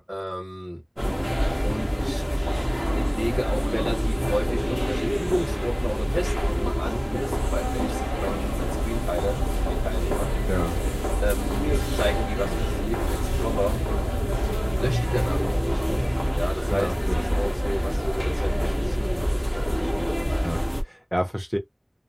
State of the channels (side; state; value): both; identical; correlation 1.00